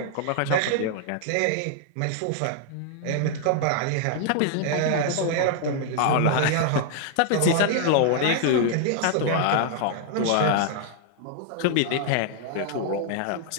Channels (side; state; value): both; different; correlation 0.00